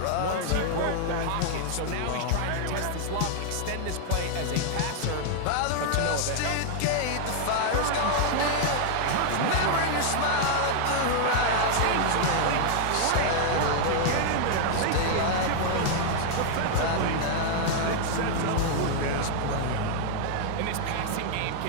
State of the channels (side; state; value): both; different; correlation 0.00